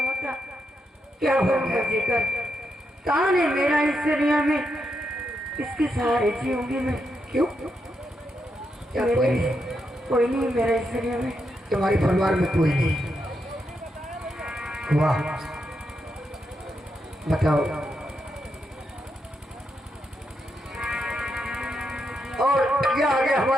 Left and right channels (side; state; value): both; normal; correlation 0.83